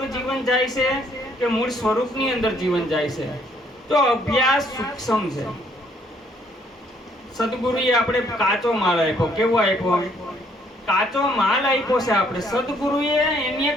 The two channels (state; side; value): normal; both; correlation 0.66